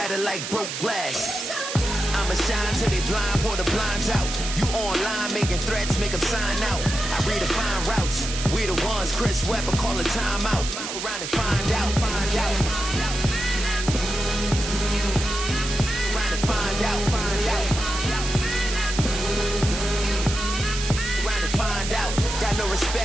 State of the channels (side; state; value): right; noise; hiss, 6 dB below the sound